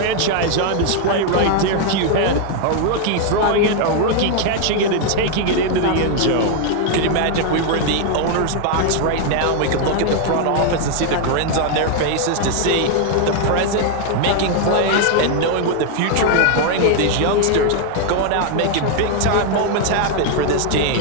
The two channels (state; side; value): different; both; correlation 0.00